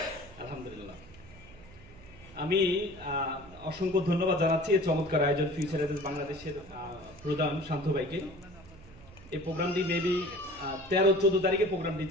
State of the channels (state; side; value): noise; right; hum, 21 dB below the sound